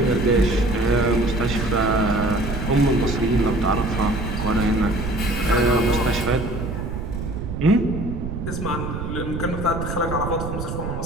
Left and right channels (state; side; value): noise; right; rumble, 5 dB below the sound